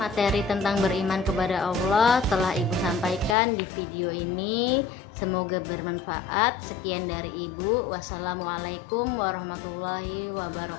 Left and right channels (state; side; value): drops out; right; at 3.4 s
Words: tentang beriman kepada Allah telah Ibu sampaikan di video ini. Semoga bermanfaat. Sekian dari Ibu. Wassalamualaikum warahmatullahi